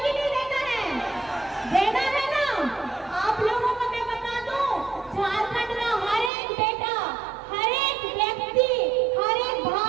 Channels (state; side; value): drops out; left; at 6.3 s